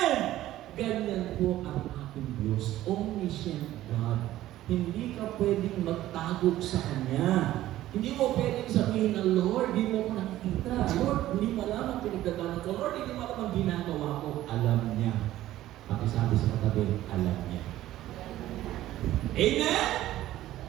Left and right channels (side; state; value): left; quieter; 14.4 dB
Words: Ganyan po ang ating Diyos. Omniscient God. Hindi ka pwedeng magtagok sa Kanya. Hindi mo pwedeng sabihin na, Lord, hindi mo ko nakikita. Lord, hindi mo alam ang pinagdadaanan ko. Lord, hindi mo alam ang ginagawa ko. Alam niya. Pakisabi sa katabi, alam niya. Amen?